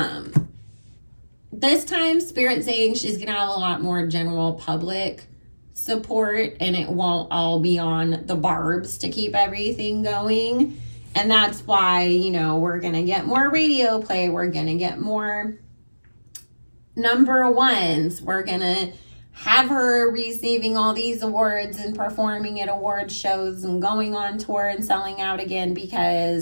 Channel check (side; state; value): both; inverted; correlation -1.00